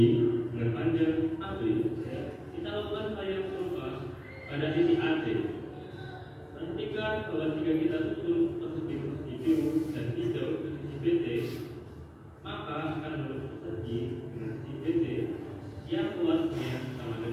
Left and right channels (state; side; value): identical; both; correlation 1.00